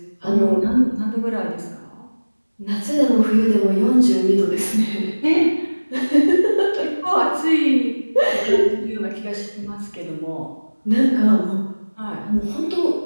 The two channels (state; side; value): inverted; both; correlation -1.00